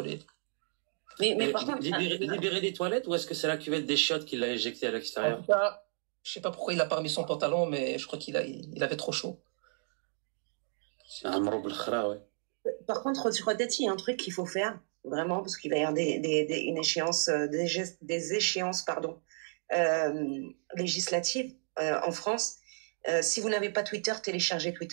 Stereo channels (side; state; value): left; silent; 56 dB below the other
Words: Mais par contre, libérer des toilettes ou est-ce que c'est la cuvette des chiottes qui l'a éjecté à l'extérieur? En tout cas, je sais pas pourquoi il a pas remis son pantalon, mais je crois qu'il avait trop chaud. C'est un mroub l'khra, ouais. Par contre, peut-être il y a un truc qu'il faut faire, vraiment, parce qu'il va y avoir une échéance, des échéances, législatives en France. Si vous n'avez pas Twitter, téléchargez